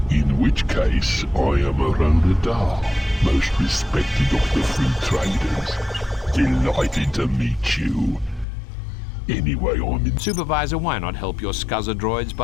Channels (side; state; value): right; drops out; at 8.5 s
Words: In which case, I am a Rodadar, most respected of the free traders. Delighted to meet you. Anyway, I'm in... Supervisor, why not help your scuzzer droids